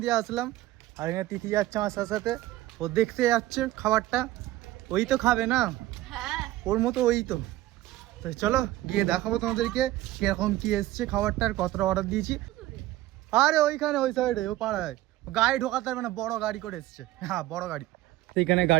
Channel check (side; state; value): left; quieter; 16.0 dB